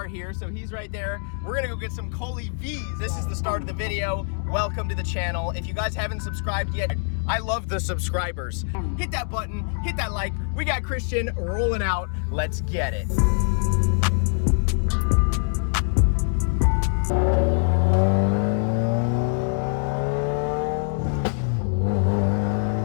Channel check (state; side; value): silent; right; digital silence